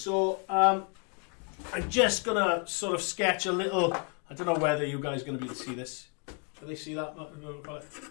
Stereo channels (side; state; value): right; quieter; 38.4 dB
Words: I'm just gonna sort of sketch a little. I don't know whether you guys are gonna be able to see this. Do they see that?